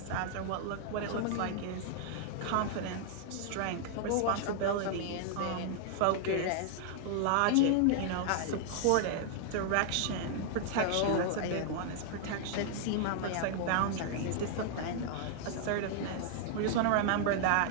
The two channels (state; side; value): different; both; correlation 0.00